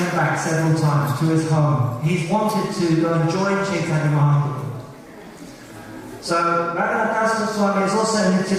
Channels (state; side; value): identical; both; correlation 1.00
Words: back several times to his home. He's wanted to go and join Chaitanya Mahaprabhu. So Raghunath Das Goswami is also Nitya